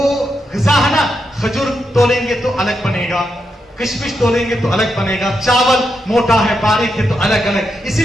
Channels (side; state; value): both; normal; correlation 0.83